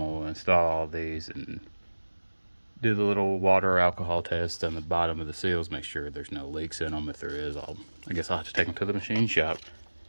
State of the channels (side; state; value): both; inverted; correlation -1.00